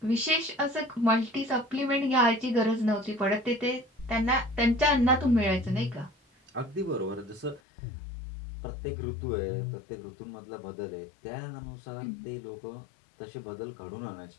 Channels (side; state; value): right; drops out; at 7.6 s